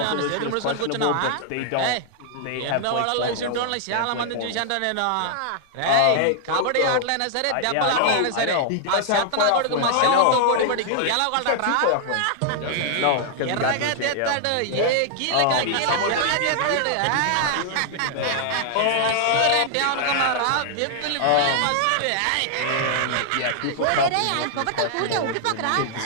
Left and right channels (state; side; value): different; both; correlation 0.00